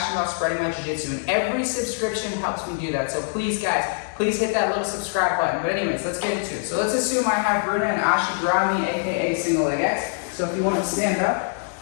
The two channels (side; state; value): right; silent; 63 dB below the other